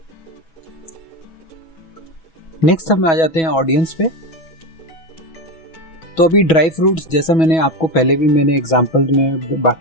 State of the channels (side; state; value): right; late; 6.2 ms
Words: नेक्स्ट हम आ जाते हैं ऑडियंस पे। तो अभी ड्राई फ्रूट्स, जैसा मैंने आपको पहले भी मैंने एग्जांपल में